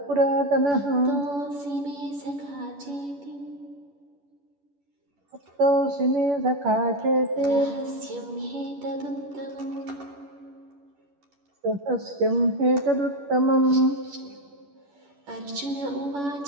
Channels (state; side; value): late; left; 11 ms